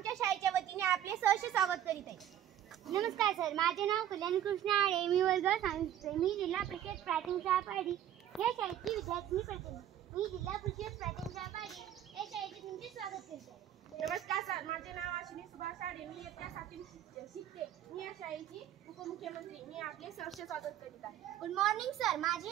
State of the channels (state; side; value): quieter; left; 11.0 dB